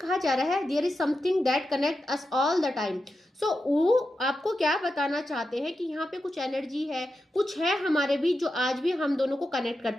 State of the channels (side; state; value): both; normal; correlation 0.89